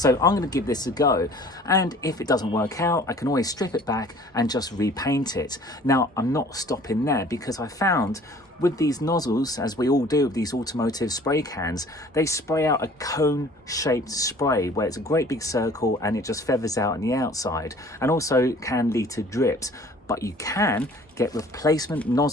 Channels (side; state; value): both; normal; correlation 0.51